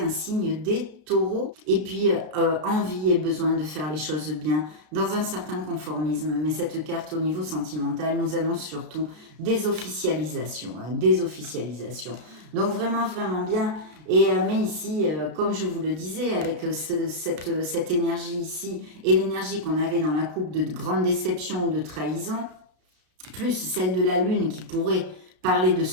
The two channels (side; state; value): left; late; 33 ms